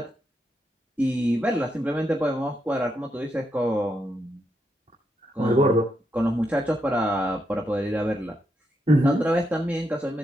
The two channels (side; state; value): both; normal; correlation 0.81